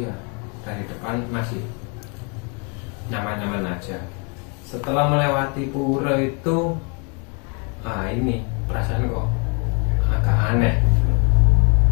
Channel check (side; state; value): right; quieter; 34.7 dB